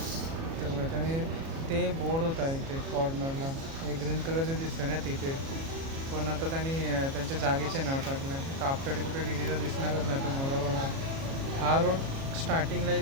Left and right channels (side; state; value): left; late; 37 ms